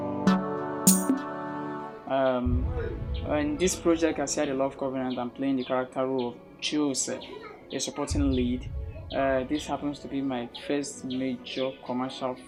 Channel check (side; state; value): both; identical; correlation 1.00